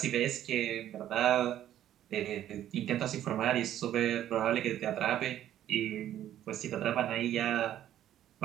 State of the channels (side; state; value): left; quieter; 11.7 dB